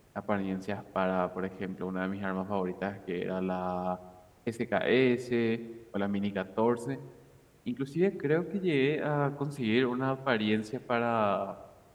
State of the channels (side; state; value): both; identical; correlation 1.00